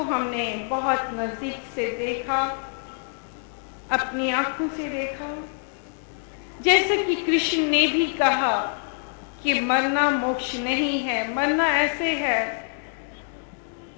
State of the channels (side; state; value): right; silent; 61 dB below the other